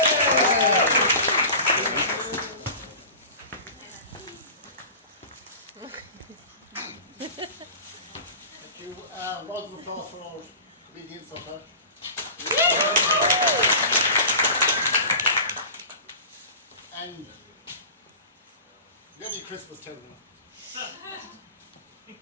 Thank you. Round of applause for our comedians of that. And Merry Christmas, tell me.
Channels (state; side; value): inverted; both; correlation -0.36